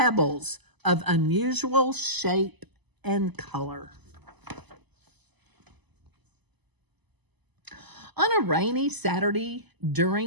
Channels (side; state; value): left; late; 1.0 ms